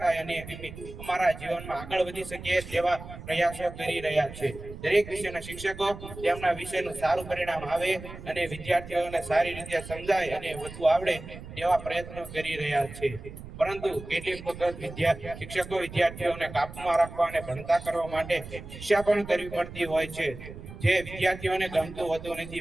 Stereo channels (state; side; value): noise; right; rumble, 13 dB below the sound